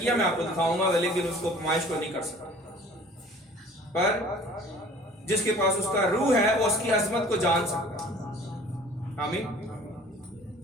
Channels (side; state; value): both; normal; correlation 0.49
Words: میں آپ کو دکھاؤں گا، لیکن اس کو پمائش کو نہیں کر سکتا۔ پر جس کے پاس اس کا روح ہے وہ اس کی عظمت کو جان سکتا ہے۔ آمین۔